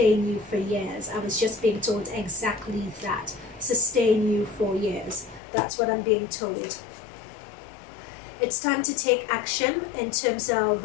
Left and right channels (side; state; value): right; drops out; at 5.4 s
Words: you for years. I was just being told exactly that. Sustain you for years. That's what I'm being told. It's time to take action in terms of,